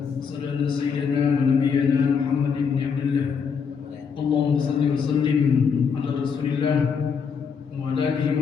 Asyhadu anna sayyidana wa nabiyyana Muhammad ibn Abdullah. Allahumma shalli wa sallim ala Rasulillah wa ala alihi wa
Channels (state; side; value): quieter; right; 6.2 dB